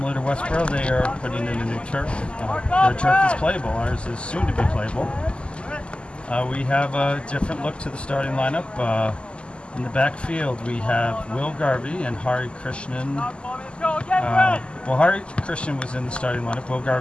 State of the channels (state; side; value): late; right; 0.052 ms